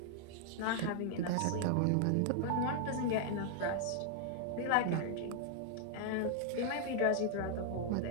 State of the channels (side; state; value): both; different; correlation -0.01